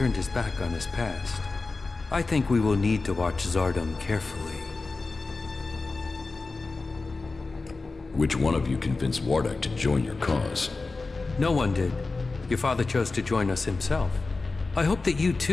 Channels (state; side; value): quieter; right; 3.8 dB